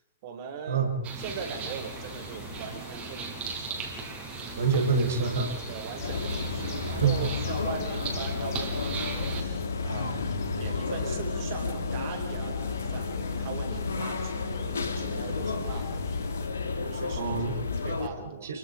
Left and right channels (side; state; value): both; inverted; correlation -0.50